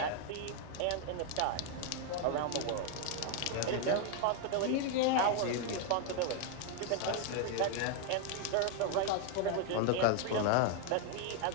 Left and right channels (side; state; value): both; different; correlation 0.01